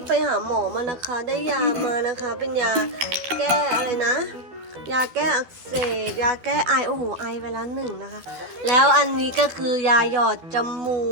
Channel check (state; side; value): late; left; 13 ms